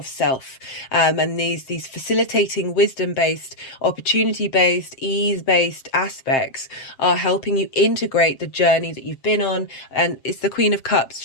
self, and these facilitating wisdom-based, opportunity-based, ease-based aspects are helping you integrate the journey that you've been on. And it's the Queen of Cups.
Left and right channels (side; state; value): right; late; 7.5 ms